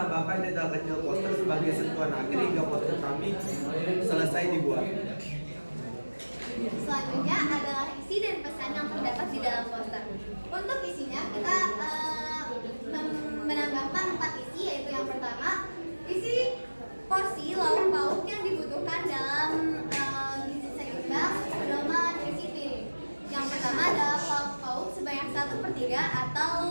detail kecil poster sebagai sentuhan akhir hingga poster kami selesai dibuat. Selanjutnya adalah isi dan pesan yang terdapat di dalam poster. Untuk isinya kita menambahkan 4 isi, yaitu yang pertama, isi porsi lauk pauk yang dibutuhkan dalam gizi seimbang pedoman isi piring. Yang pertama adalah lauk pauk sebanyak 1/3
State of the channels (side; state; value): both; inverted; correlation -1.00